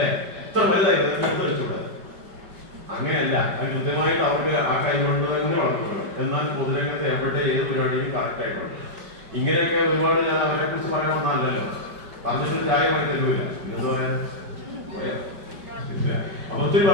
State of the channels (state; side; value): late; left; 5.1 ms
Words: എത്ര വലുതായി എടുത്ത് കഴിച്ചൂടെ? അങ്ങനെയല്ല, അത് കൃത്യമായിട്ട് അവർക്ക് ആ കൈ കൊണ്ട് തന്നെ വളർത്തുന്നത്. എന്നാൽ പൊതുരംഗത്ത് എവിടെ ഏത് പരിപാടിയും കറക്റ്റ് ആയിട്ടുണ്ട്. ഇങ്ങനെയൊക്കെ ഒരുപാട് ഞാൻ അവരെ കുറിച്ച് പറയാൻ വന്നതല്ലോ, പറഞ്ഞിട്ട് ചായമായി തരൂല. എന്താ പറയാ അപ്പൊ ഒത്തിരി